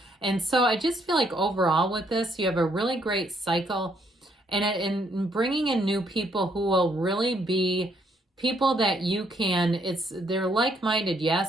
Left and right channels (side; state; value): both; normal; correlation 0.71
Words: And so I just feel like overall with this, you have a really great cycle, and bringing in new people who will really be people that you can, they're like-minded,